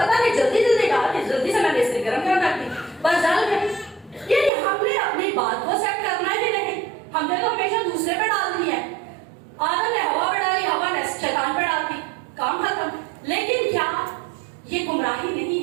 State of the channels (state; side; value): drops out; left; at 4.5 s